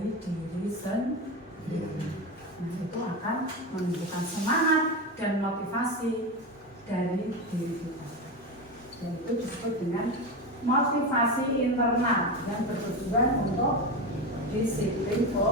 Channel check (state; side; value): normal; both; correlation 0.19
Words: diri sendiri. Nah, itu akan menunjukkan semangat dan motivasi dari diri kita. Dan itu disebut dengan motivasi internal yang bertujuan untuk disiplin